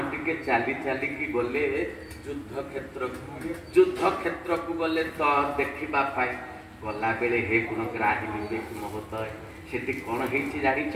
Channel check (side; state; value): both; identical; correlation 1.00